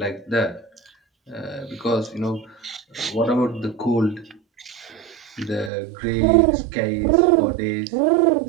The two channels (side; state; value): left; drops out; at 5.7 s